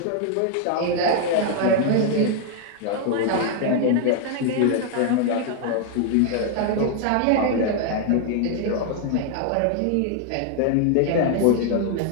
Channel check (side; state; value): both; different; correlation 0.00